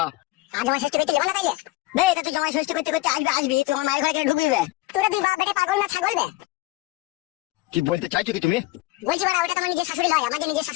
আর জমাই ষষ্ঠী করতে যাবো না তাইলে? বে এটা তুই জমাই ষষ্ঠী করতে করতে আসবি তুই আমার মায়ের ঘরে কেন ঢুকবি বে? তোরা দুই বাপ বেটে পাগল না ছাগল বে? কি বলতে চাইছো কি তুমি? বলছি বাড়া ওটা তোমার নিজের শাশুড়ি নয়, আমার যে নিজের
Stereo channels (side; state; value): right; quieter; 19.3 dB